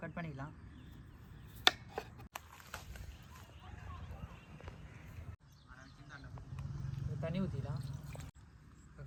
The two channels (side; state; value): both; identical; correlation 1.00